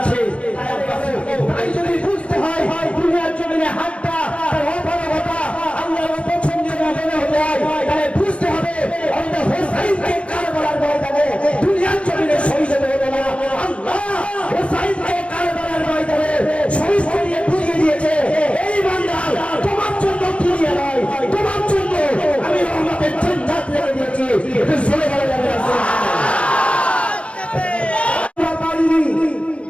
আছে। তাই যদি বুঝতে হয় দুনিয়ার জমিনে হাতটা তার অপারগতা আল্লাহর অপছন্দের মনে হতে হয়, তাহলে বুঝতে হবে আমাদের হোসাইনকে কারবালার ময়দানে দুনিয়ার জমিনে শহীদ হতে হবে না। আল্লাহ হোসাইনকে কারবালার ময়দানে শহীদ করে বুঝিয়ে দিয়েছে, এই বান্দা তোমার জন্য দুনিয়া নয়, তোমার জন্য আমি রহমতের জান্নাত রেখে দিয়েছি। এটা চলে গেল যাবে না।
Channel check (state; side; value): late; right; 0.061 ms